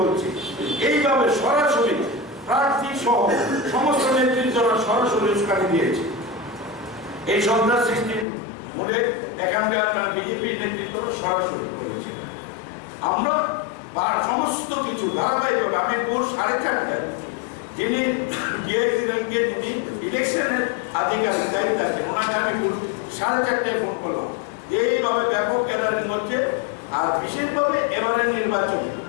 বলছে। এইভাবে সরাসরি প্রার্থী সহ সমস্ত নেতৃত্বরা সরাসরি উস্কানি দিয়েছে। এই সন্ত্রাস সৃষ্টির মূলে এখানকার বিজেপির নেতৃত্ব সরাসরি করেছে। আমরা সমস্ত কিছু ধারাবাহিকভাবে আমি ভোর 4:30টায় যিনি ডিআইসি র্যাঙ্কে যিনি ইলেকশনের আধিকারিক দায়িত্ব আছেন ওনাকে আমি 4:30টায় ফোন করলাম, এইভাবে ব্যাপক গ্যাদারিং হচ্ছে। আর বিশেষভাবে এবারের নির্বাচন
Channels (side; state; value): right; drops out; at 8.2 s